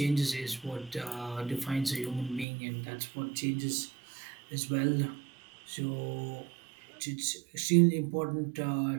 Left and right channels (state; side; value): drops out; left; at 2.5 s